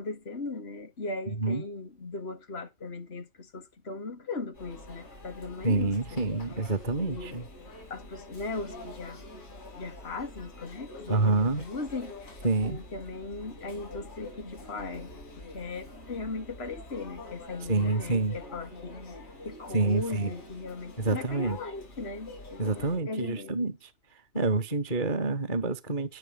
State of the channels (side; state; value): right; late; 2.4 ms